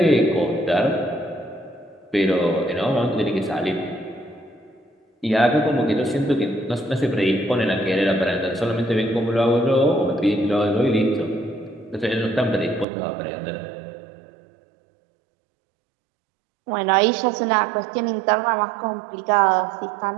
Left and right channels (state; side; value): drops out; left; at 12.9 s